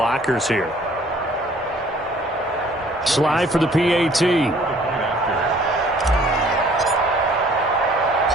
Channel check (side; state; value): both; normal; correlation 0.56